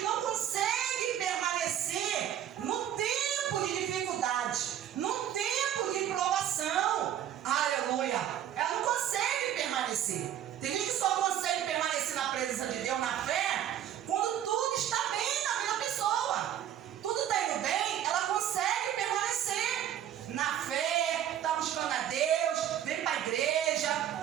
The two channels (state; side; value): quieter; left; 10.8 dB